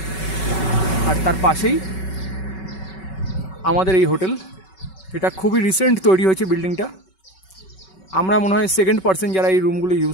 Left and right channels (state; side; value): late; right; 5.3 ms